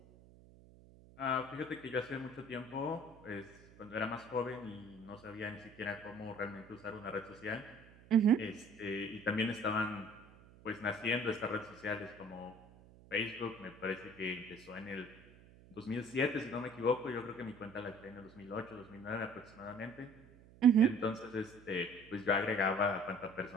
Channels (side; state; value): right; noise; hum, 23 dB below the sound